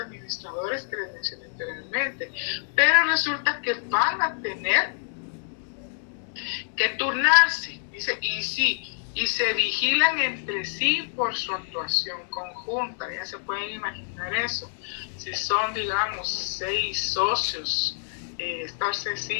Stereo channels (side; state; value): right; silent; digital silence